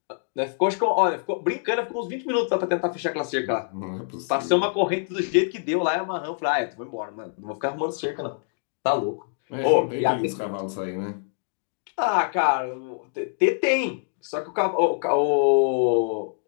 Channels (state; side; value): silent; right; digital silence